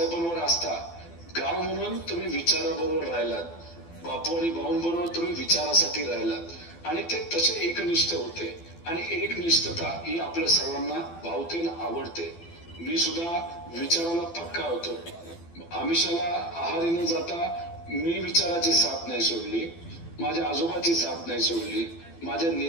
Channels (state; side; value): late; right; 12 ms